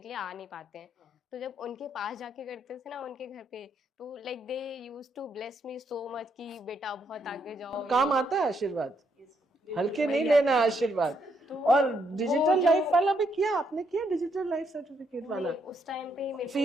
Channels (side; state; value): both; normal; correlation 0.75